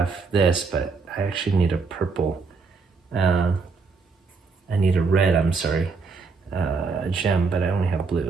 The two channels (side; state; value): left; quieter; 4.6 dB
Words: this, but I actually need a purple. I need a red, I'm sorry, gem, but I only have